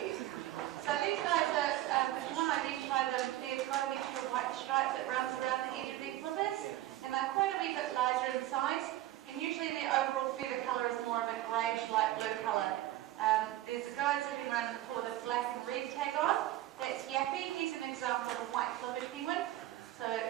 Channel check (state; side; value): quieter; left; 14.8 dB